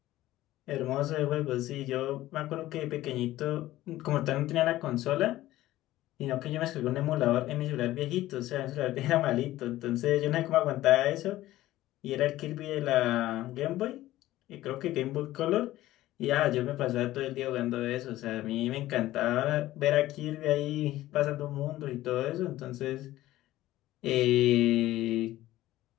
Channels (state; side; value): quieter; right; 15.6 dB